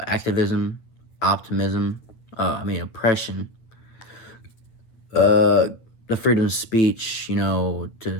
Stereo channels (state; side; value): late; right; 9.0 ms